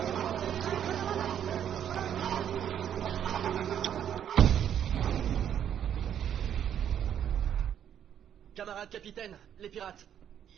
Camarade capitaine, les pirates,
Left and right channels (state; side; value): quieter; left; 9.5 dB